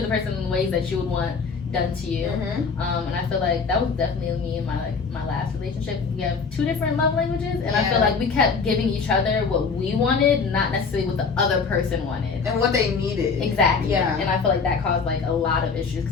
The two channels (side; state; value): right; quieter; 5.1 dB